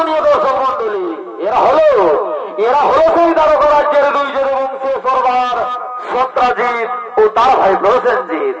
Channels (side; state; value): both; identical; correlation 1.00